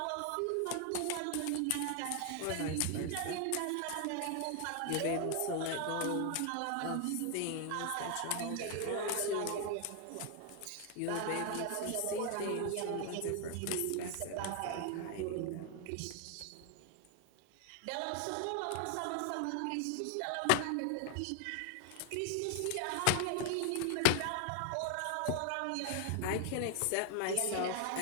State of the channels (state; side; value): different; both; correlation 0.00